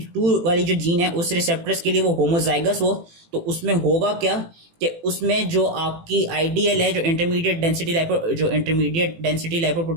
वाली जो जीन है उस रिसेप्टर्स के लिए वो होमोजाइगस हो तो उसमें होगा क्या कि उसमें जो आपकी आइडियल है जो इंटरमीडिएट डेंसिटी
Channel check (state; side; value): late; left; 18 ms